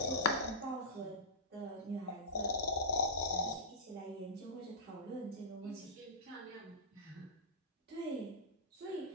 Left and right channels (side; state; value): both; normal; correlation -0.15